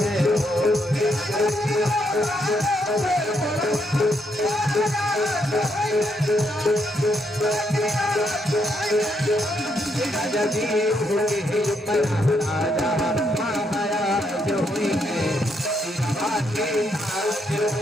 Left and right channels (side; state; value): both; normal; correlation 0.76